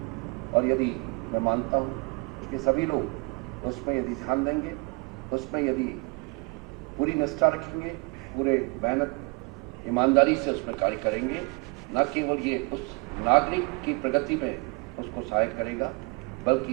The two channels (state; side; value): quieter; left; 29.2 dB